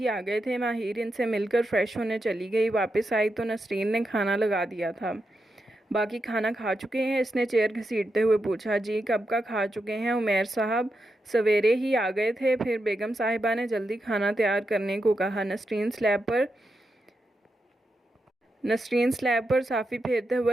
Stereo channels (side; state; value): both; normal; correlation 0.86